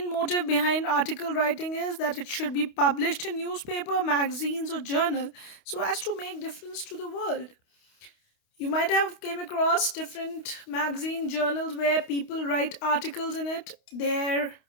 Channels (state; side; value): late; right; 29 ms